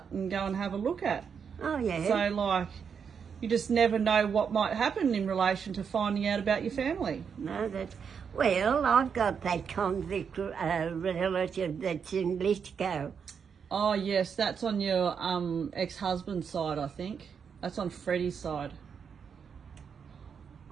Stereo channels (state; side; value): quieter; left; 6.7 dB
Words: and go and have a look at. Oh, yeah. So, like, you just never know what might happen in relation to finding out about your family. No, that's... Well, I've got that convict relative that's in Lithgow. Oh, yes, that's on your ex-husband's side, I think. That's on Freddie's side.